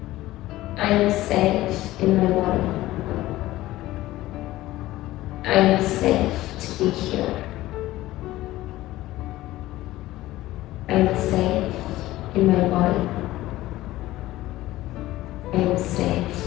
I am safe in my body. I am safe to be here. I am safe in my body. I am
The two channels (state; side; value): quieter; right; 16.5 dB